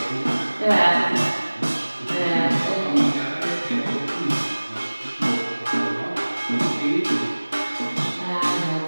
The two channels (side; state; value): both; inverted; correlation -1.00